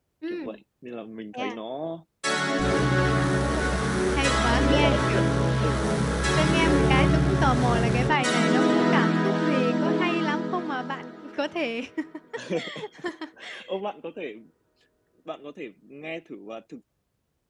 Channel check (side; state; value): both; identical; correlation 1.00